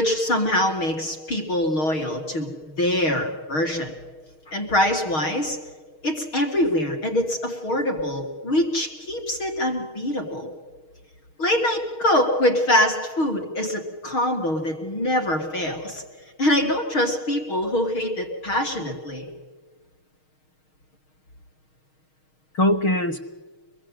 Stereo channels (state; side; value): late; right; 6.4 ms